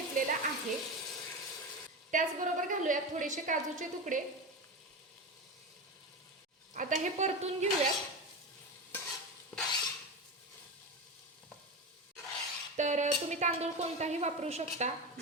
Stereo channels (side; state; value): both; normal; correlation 0.22